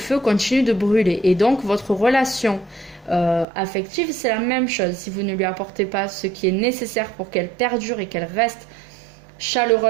continue de brûler. Et donc, votre relation affective, c'est la même chose. Si vous ne lui apportez pas ce qui est nécessaire pour qu'elle perdure et qu'elle reste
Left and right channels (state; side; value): drops out; left; at 3.5 s